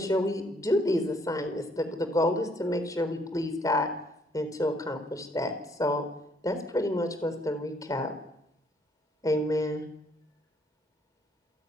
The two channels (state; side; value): normal; both; correlation 0.66